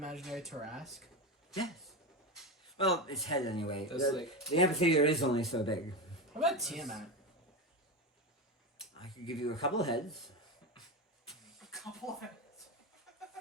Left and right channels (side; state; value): both; normal; correlation 0.18